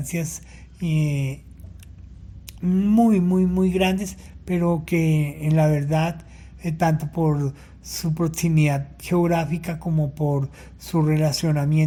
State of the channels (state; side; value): identical; both; correlation 1.00